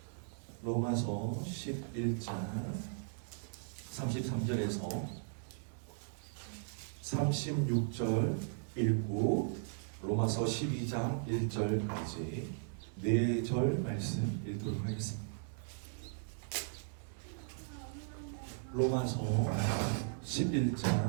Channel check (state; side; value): silent; left; 53 dB below the other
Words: 로마서 11장 33절에서 36절 읽고 로마서 12장 1절까지 4절 말씀 읽도록 하겠습니다. 로마서